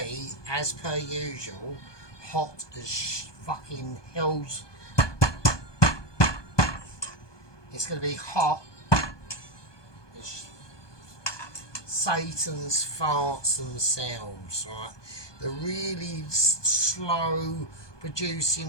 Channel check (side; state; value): right; late; 1.2 ms